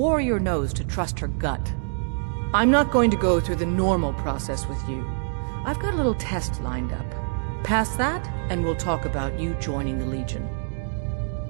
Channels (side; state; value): left; silent; digital silence